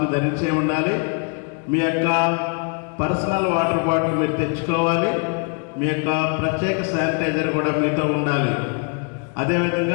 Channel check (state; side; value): quieter; right; 37.0 dB